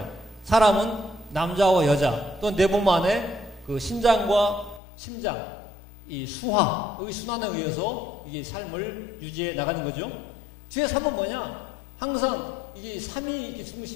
사람은 남자와 여자 또 내 몸 안에 그 신장과 심장 이 수화의 순환에 의해서 이게 삶을 유지해 나가는 거죠. 뒤에 3은 뭐냐? 항상 이게 3이 이렇게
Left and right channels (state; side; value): drops out; right; at 4.8 s